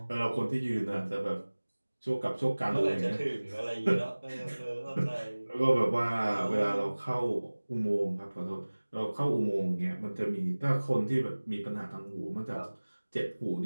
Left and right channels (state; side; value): inverted; both; correlation -1.00